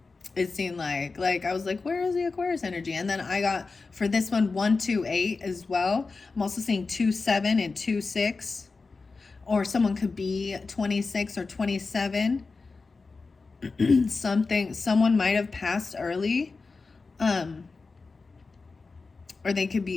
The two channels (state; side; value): quieter; right; 4.1 dB